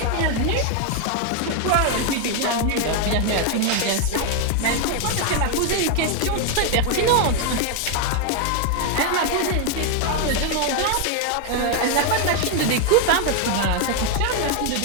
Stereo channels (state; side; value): different; both; correlation 0.01